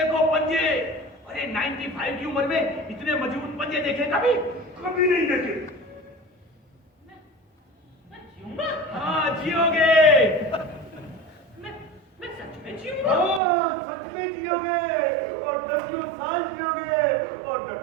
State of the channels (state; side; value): drops out; left; at 13.4 s